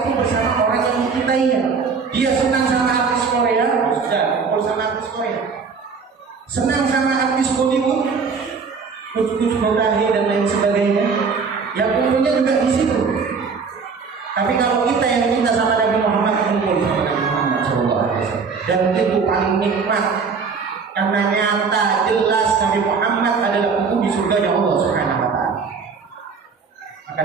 itu bersama orang yang dicintainya. Dia senang sama artis Korea, sudah bersama artis Korea. Senang sama artis Bollywood, Kuch Motahe dan lain sebagainya, yang kumpulnya juga di situ. Tapi kalau kita yang cinta sama Nabi Muhammad, kumpul sama Nabi Muhammad SAW. Dan itu paling nikmat, karena nyata jelas Nabi Muhammad adalah penghuni surga Allah Subhanahu wa ta'ala. Maka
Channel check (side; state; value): left; quieter; 5.3 dB